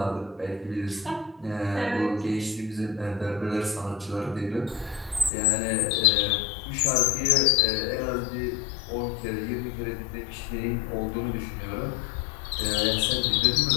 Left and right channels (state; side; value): drops out; right; at 5.3 s